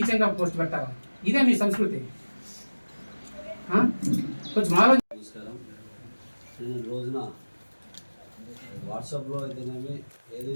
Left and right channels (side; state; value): both; inverted; correlation -1.00